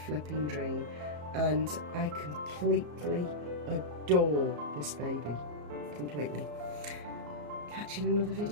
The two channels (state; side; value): late; left; 34 ms